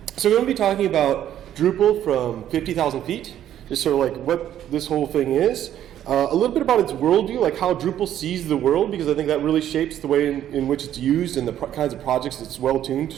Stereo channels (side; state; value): left; quieter; 11.2 dB